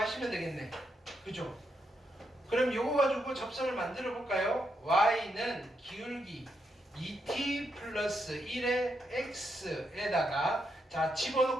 되겠네. 그죠? 그럼 요거 가지고 접선을 만들어 볼까요? y는 기울기 2t 플러스 1의 x에다가 자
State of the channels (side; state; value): both; normal; correlation 0.81